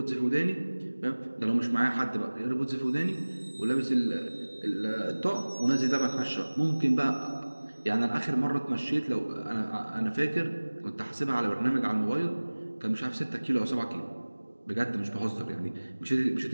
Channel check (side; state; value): both; inverted; correlation -1.00